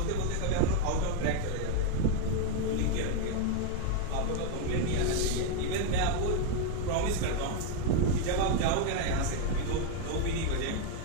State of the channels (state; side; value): different; both; correlation 0.01